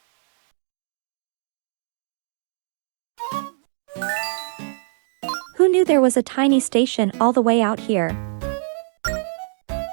knew there was a tiny station all the way out here?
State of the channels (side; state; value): left; silent; digital silence